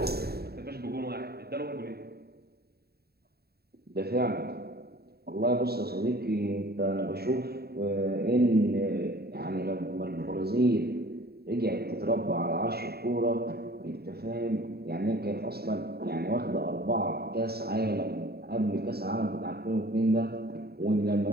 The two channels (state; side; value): late; left; 0.46 ms